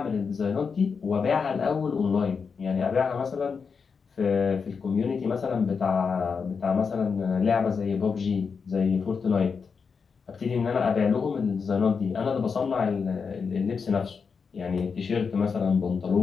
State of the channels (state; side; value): quieter; right; 5.6 dB